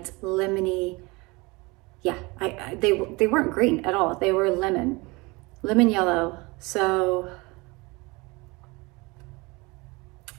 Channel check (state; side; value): quieter; left; 25.2 dB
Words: lemony. Yeah, they weren't green at all. They were lemon yellow. So